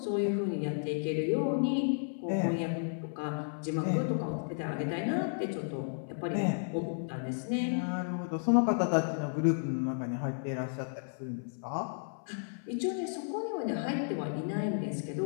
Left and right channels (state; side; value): silent; right; 56 dB below the other